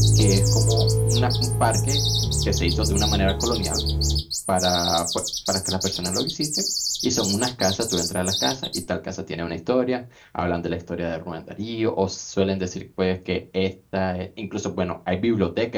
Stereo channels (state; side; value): identical; both; correlation 1.00